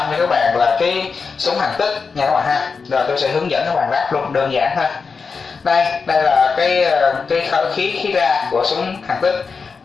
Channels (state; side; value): quieter; right; 5.1 dB